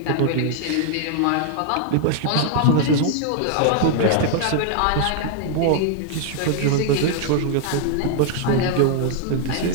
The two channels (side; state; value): both; different; correlation 0.00